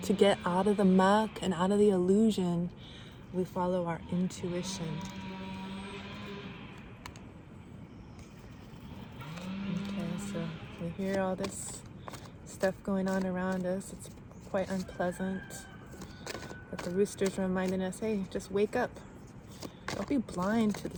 to get out of the muck and out of the illusion, we follow our intuition. Okay, so we hear all this stuff going on around us. It's quite unpleasant. But the rooster's reminding us, hey, just wake up. Don't be blind to the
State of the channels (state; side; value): identical; both; correlation 1.00